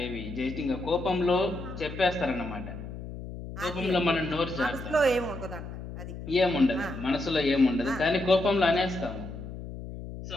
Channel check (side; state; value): left; noise; hum, 10 dB below the sound